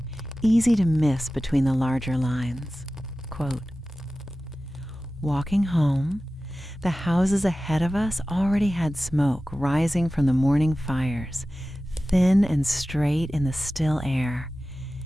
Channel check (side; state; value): both; normal; correlation 0.95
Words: easy to miss between the larger lines. Quote, walking home, the houses ahead of us already had smoke rising from the morning fires, thin and straight in the still air,